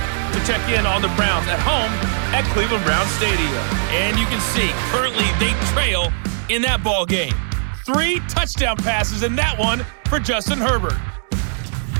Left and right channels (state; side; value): silent; left; 66 dB below the other